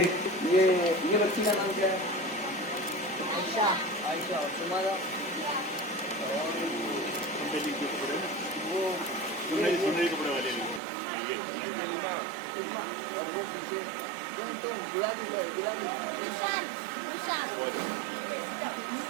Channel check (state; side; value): drops out; left; at 10.8 s